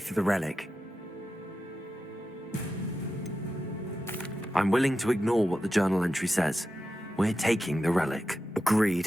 the relic. I'm willing to ignore what the journal entry says. We're taking the relic.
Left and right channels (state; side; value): normal; both; correlation 0.91